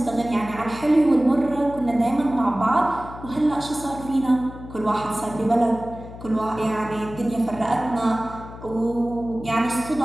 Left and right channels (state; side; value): noise; left; hum, 14 dB below the sound